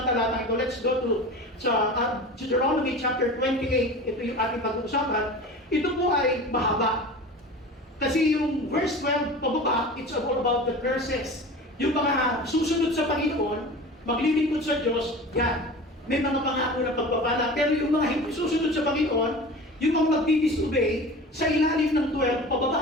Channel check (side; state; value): both; normal; correlation 0.35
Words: talatang ito. Let's go to Deuteronomy chapter 28. Ito yung ating pag-uusapan. Ito po ay mahaba. Kasi yung verse 12 pababa, it's all about the curses. Yung mga susunod sa Panginoon, maglilingkod sa Diyos, yan. May mga pangako na pagpapala. Pero yung mga hindi susunod sa Panginoon, yung mga magdi-disobey, sa ilalim ng 12